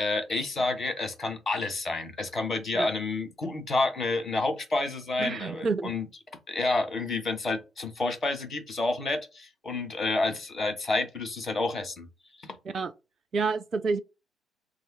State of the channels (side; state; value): both; normal; correlation 0.80